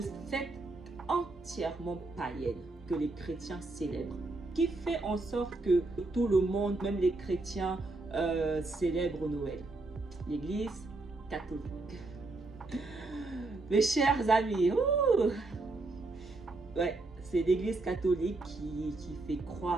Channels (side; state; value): left; quieter; 3.2 dB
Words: fête entièrement païenne que les chrétiens célèbrent. Qui fait en sorte que tout le monde, même les chrétiens, célèbrent Noël? L'Église catholique. Mes chers amis, ouais, c'est l'Église catholique qui fait